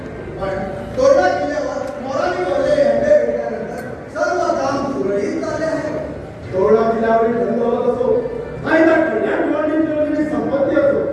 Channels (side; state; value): both; identical; correlation 1.00